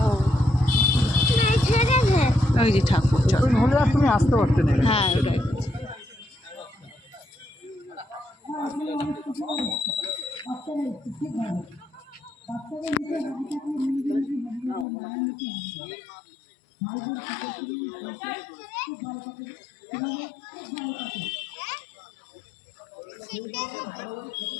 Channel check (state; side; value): drops out; right; at 14.9 s